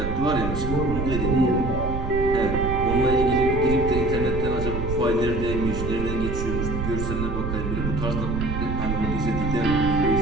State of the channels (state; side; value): noise; right; rumble, 3 dB below the sound